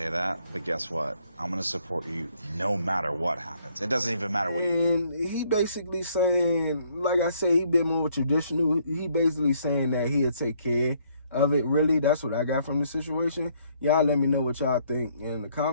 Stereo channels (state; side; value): inverted; both; correlation -0.66